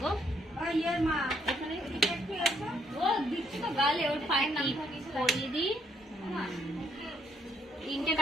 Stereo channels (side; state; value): both; normal; correlation 0.71